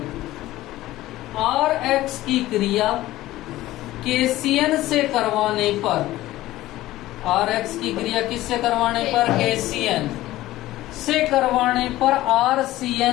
RX की क्रिया KCN से करवाने पर, RX की क्रिया किससे करवाने पर? KCN से करवाने पर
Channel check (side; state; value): right; quieter; 16.1 dB